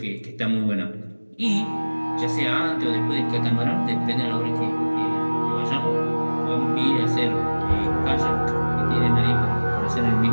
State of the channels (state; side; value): inverted; both; correlation -1.00